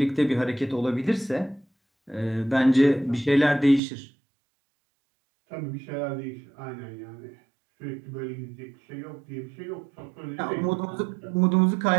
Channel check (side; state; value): left; drops out; at 3.8 s